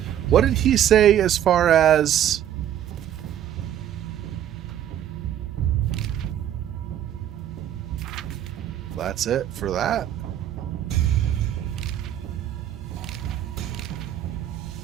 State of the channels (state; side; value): quieter; left; 10.7 dB